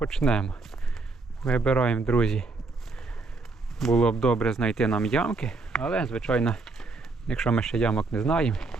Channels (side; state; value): left; quieter; 3.7 dB